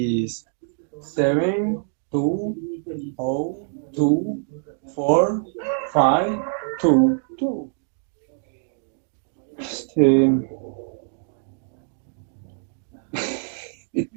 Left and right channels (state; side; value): silent; left; digital silence